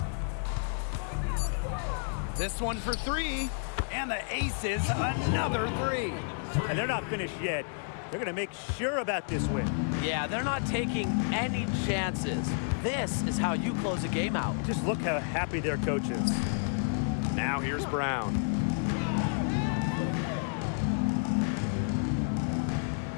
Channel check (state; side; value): silent; right; digital silence